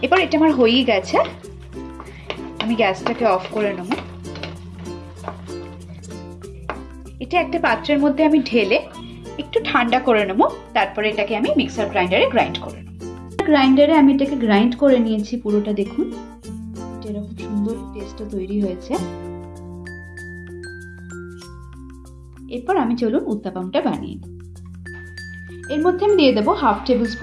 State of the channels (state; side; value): identical; both; correlation 1.00